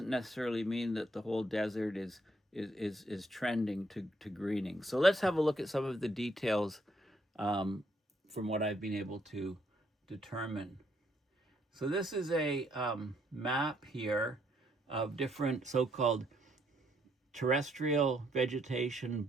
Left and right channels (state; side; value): normal; both; correlation 0.72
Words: necessarily mean that the whole desert is trending to greening. So let's have a look at some of the details from what I've been able to determine. So this is a map here of different so-called terrestrial vegetation